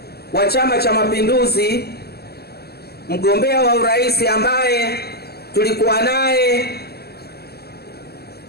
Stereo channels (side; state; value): right; late; 0.46 ms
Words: wa Chama cha Mapinduzi, mgombea wa urais ambaye tulikuwa naye